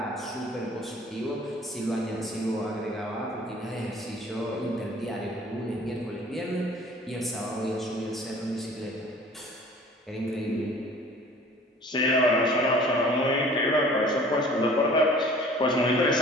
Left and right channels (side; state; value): both; normal; correlation 0.49